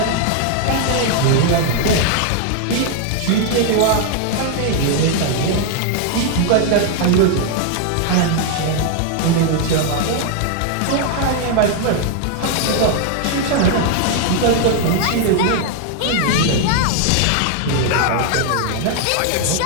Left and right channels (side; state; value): both; different; correlation 0.00